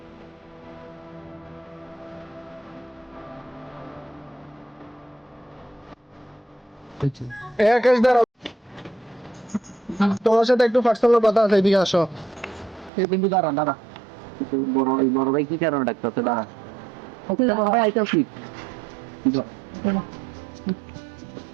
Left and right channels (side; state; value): left; drops out; at 12.9 s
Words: তোমার সাথে একটু পার্সোনাল কথা আছে, এদিকে আসো। এই বিন্দু দাঁড়া দাঁড়া, বড় ভাই কি কারণে ডাক্তার? দাঁড়া, বড় ভাই আইতাছি।